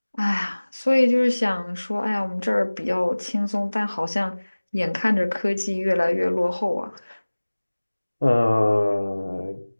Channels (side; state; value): both; inverted; correlation -1.00